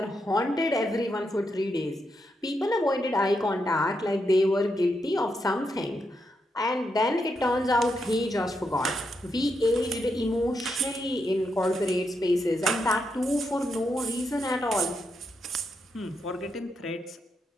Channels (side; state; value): both; normal; correlation 0.82